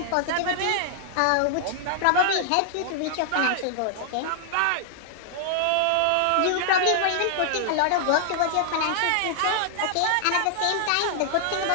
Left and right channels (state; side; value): different; both; correlation -0.01